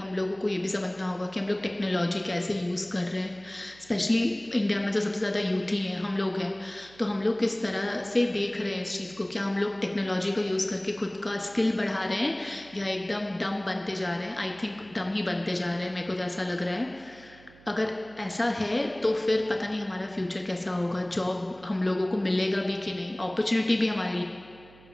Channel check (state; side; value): noise; right; hum, 24 dB below the sound